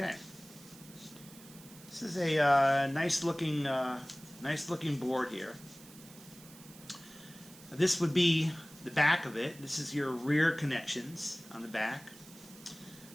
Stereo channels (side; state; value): right; noise; hiss, 20 dB below the sound